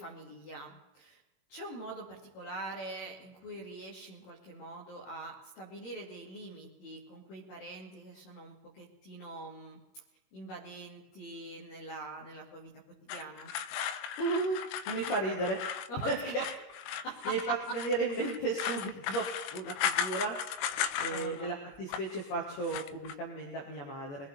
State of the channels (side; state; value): right; late; 22 ms